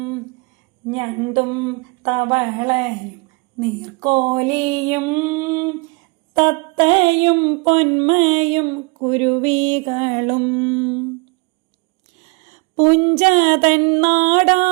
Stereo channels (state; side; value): quieter; left; 29.7 dB